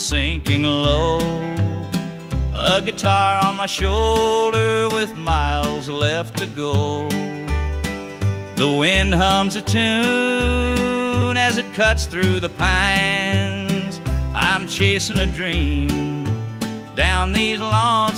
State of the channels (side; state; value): both; identical; correlation 1.00